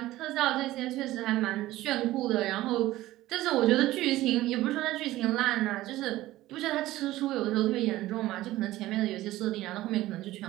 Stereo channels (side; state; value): left; quieter; 16.2 dB